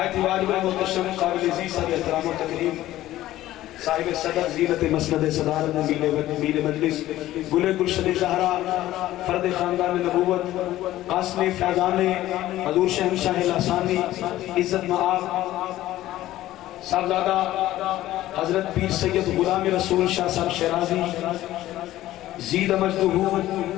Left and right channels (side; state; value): right; quieter; 14.8 dB